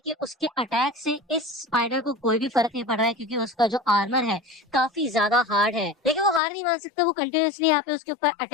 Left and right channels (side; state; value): right; drops out; at 6.4 s